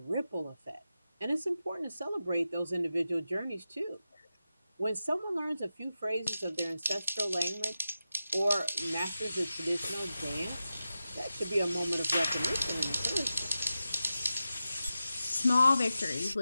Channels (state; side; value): inverted; both; correlation -0.92